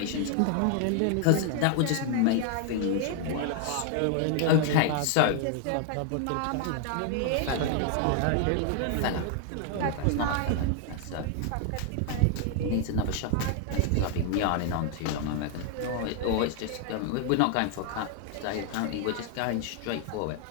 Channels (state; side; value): different; both; correlation 0.00